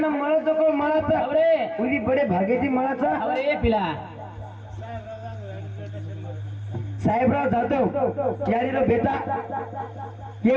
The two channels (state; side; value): identical; both; correlation 1.00